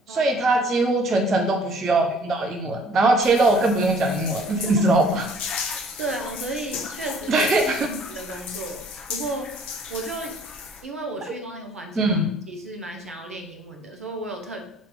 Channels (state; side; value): normal; both; correlation 0.56